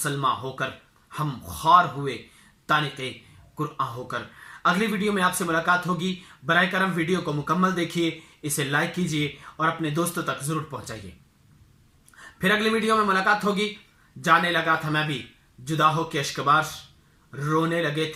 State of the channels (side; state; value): both; identical; correlation 1.00